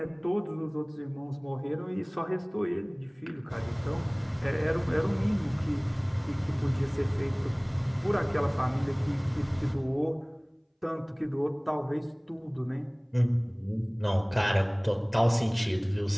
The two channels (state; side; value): identical; both; correlation 1.00